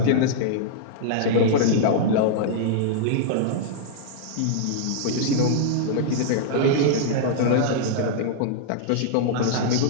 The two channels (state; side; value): different; both; correlation -0.02